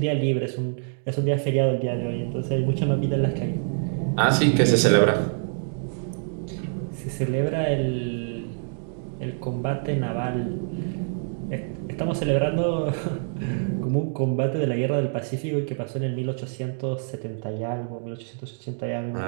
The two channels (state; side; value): silent; left; digital silence